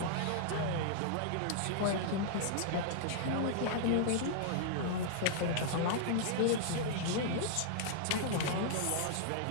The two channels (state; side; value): different; both; correlation -0.01